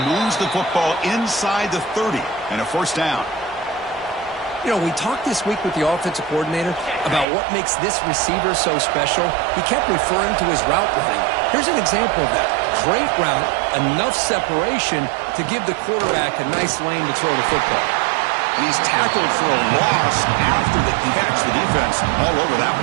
Moves the football inside the 30 and a 1st down. You know, we talked this week with the offensive coordinator about what makes this receiver so special. He kept referring to his route running. Here's an example of that. Great route, enough separation to give the quarterback a nice lane to throw the football. And he's tackled for a loss after the catch. The defense all over that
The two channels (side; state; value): left; drops out; at 7.2 s